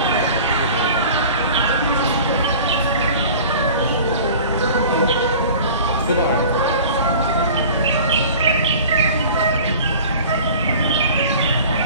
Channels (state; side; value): inverted; both; correlation -0.42